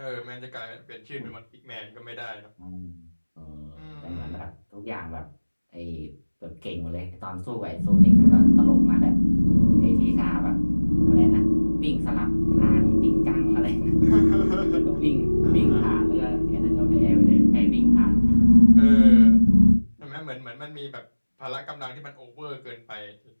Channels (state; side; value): inverted; both; correlation -1.00